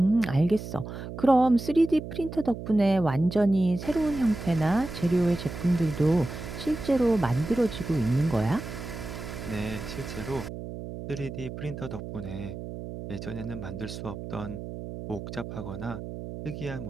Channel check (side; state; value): right; noise; hum, 9 dB below the sound